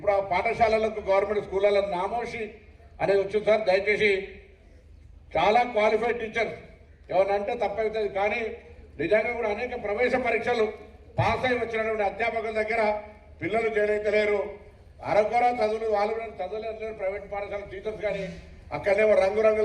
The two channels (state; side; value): identical; both; correlation 1.00